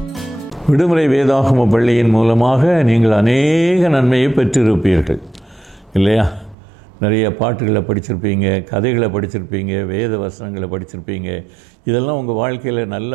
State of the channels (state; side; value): drops out; left; at 6.6 s